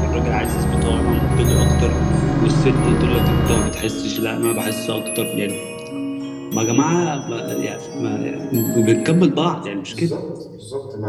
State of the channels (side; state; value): both; identical; correlation 1.00